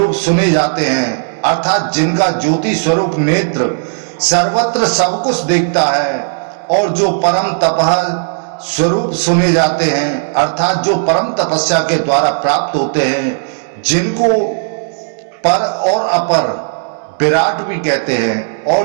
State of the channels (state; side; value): silent; left; digital silence